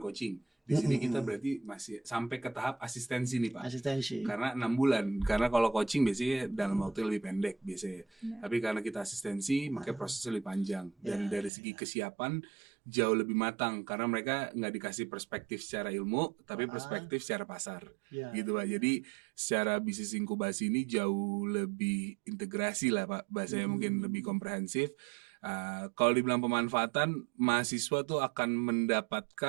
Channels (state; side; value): drops out; left; at 11.5 s